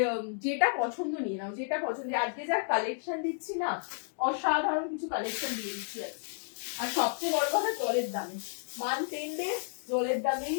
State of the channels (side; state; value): right; silent; digital silence